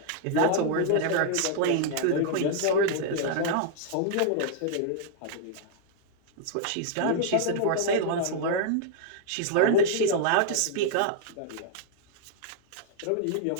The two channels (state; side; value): different; both; correlation 0.00